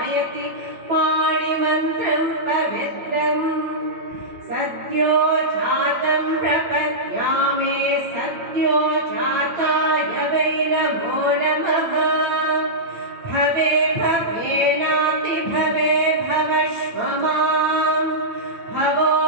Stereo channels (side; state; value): left; late; 9.0 ms